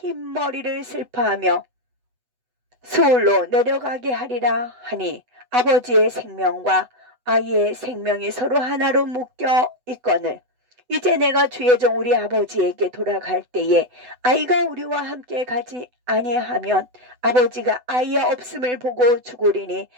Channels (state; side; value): late; left; 8.0 ms